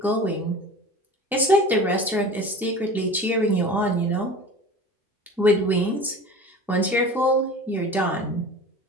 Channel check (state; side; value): normal; both; correlation 0.38